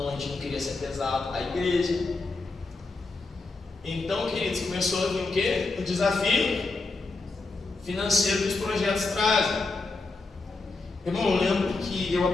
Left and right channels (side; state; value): right; quieter; 3.6 dB